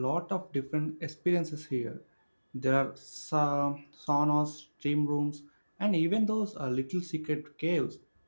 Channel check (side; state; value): both; inverted; correlation -1.00